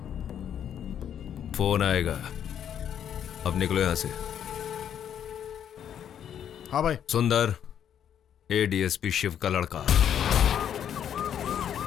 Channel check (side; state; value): right; quieter; 9.3 dB